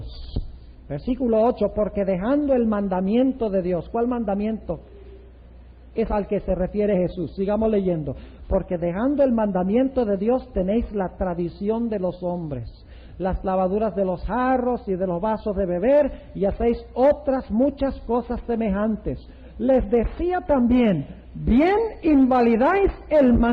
Versículo 8, porque dejando el mandamiento de Dios. ¿Cuál mandamiento es al que se refiere Jesús? Sigamos leyendo. Porque dejando el mandamiento de Dios tenéis la tradición de los hombres, las lavaduras de los jarros y de los vasos de beber, y hacéis otras muchas cosas semejantes. Les decía también, bien invalidáis el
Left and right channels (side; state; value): both; identical; correlation 1.00